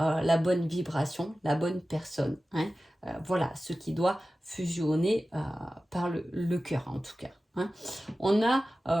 bonne vibration, la bonne personne. Hein. Voilà, ce qui doit fusionner par le cœur en tout cas. Hein. On a...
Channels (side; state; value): both; normal; correlation 0.95